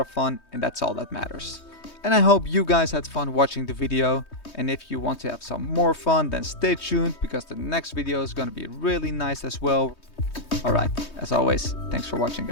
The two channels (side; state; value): right; late; 3.2 ms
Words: fun, and that's all that matters. And I hope you guys had fun watching the video, and if you want to have some more fun, then stay tuned, because the next video is gonna be really nice as well. Alright, as always, thanks for watching,